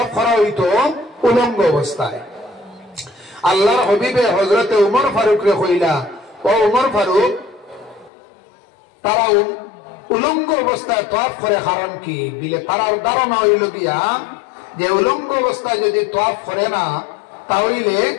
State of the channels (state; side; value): drops out; right; at 8.1 s